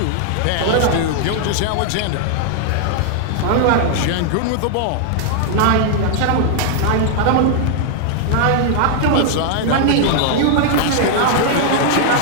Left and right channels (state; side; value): different; both; correlation 0.00